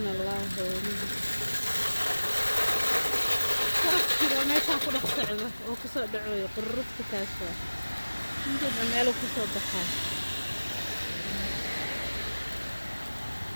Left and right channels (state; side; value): inverted; both; correlation -1.00